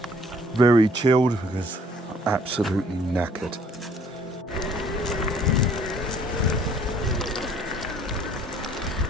Very chilled because I'm absolutely knackered.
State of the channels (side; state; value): both; normal; correlation 0.59